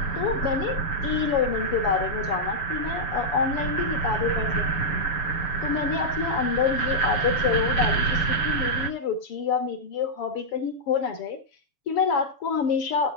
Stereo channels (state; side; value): late; right; 7.1 ms